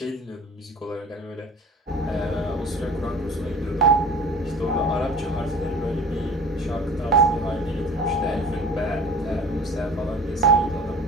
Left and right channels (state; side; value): normal; both; correlation 0.43